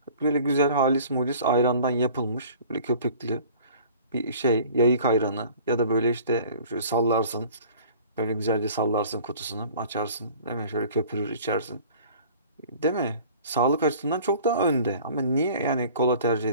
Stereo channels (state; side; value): inverted; both; correlation -0.47